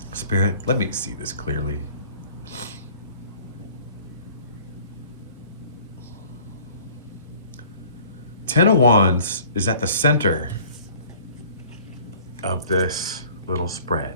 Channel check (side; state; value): both; inverted; correlation -0.51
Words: Spirit, let me see this clearly. Ten of Wands is at the center of this little spread.